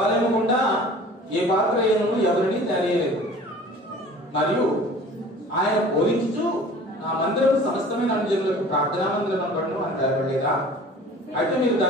గుండా ఏ పాత్రను ఎవరిని తెలియలేదు. మరియు ఆయన బోధించుచు, నా మందిరం సమస్తమైన అనుజనులకు ప్రార్థనా మందిరం అనబడును అని తెలపలేదా? అయితే మీరు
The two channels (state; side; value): normal; both; correlation 0.45